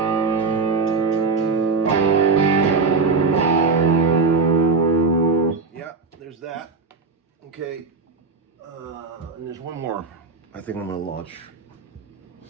There's that. Okay. And there's one more I think I'm going to launch.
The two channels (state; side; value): quieter; left; 4.4 dB